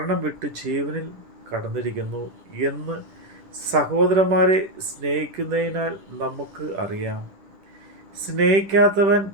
വിട്ട് ജീവനിൽ കടന്നിരിക്കുന്നു എന്ന് സഹോദരന്മാരെ സ്നേഹിക്കുന്നതിനാൽ നമുക്ക് അറിയാം. സ്നേഹിക്കാത്തവൻ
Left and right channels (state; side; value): late; left; 10 ms